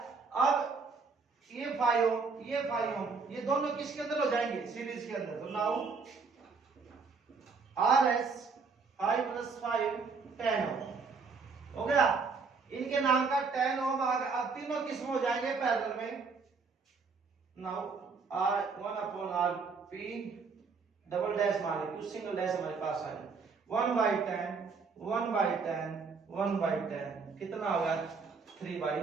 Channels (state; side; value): quieter; left; 4.9 dB